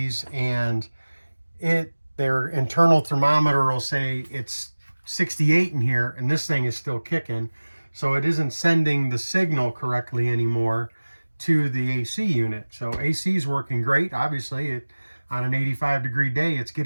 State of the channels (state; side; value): inverted; both; correlation -1.00